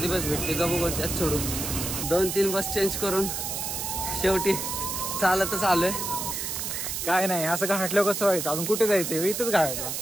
बस भेटते का बघू, त्यात सोडून 2-3 बस चेंज करून शेवटी चालतच आलोय. काय नाही, असं घाटलं कसं व्हायचं? अजून कुठे जायचंय? इथंच घाटलं.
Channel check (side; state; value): right; noise; hiss, 3 dB below the sound